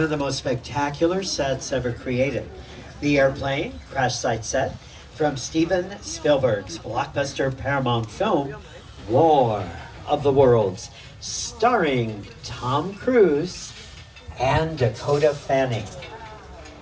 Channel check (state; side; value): identical; both; correlation 1.00